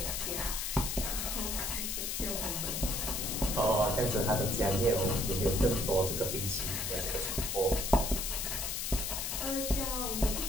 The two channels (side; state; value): left; noise; hiss, 2 dB below the sound